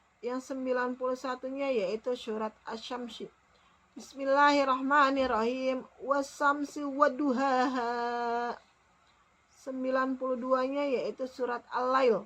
Yang 91-nya yaitu surat Asy-Syamsi. Bismillahirrahmanirrahim. Was-samsi wadduhaha. 92-nya yaitu surat Al-Lail.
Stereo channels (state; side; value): identical; both; correlation 1.00